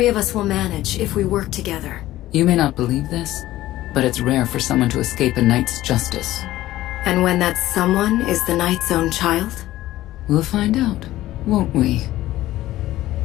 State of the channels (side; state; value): right; quieter; 15.4 dB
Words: of us will manage if we work together. You may not believe this, but it's rare for someone to escape a Knight's justice. And when that someone is the Knight's own child? We'll find out, won't we?